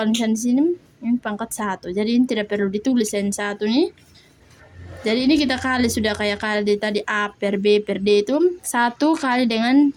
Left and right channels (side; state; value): both; identical; correlation 1.00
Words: misalnya di sini ini pangkat 1. Jadi ini tidak perlu ditulis yang 1 nih. Jadi ini kita kali sudah kayak kali tadi A per B per D itu 1 kali dengan